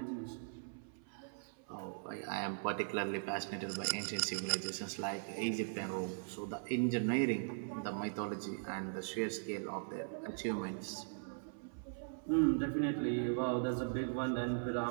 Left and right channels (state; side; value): silent; left; 51 dB below the other